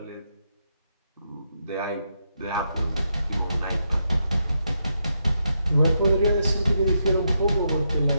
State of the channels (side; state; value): both; inverted; correlation -0.82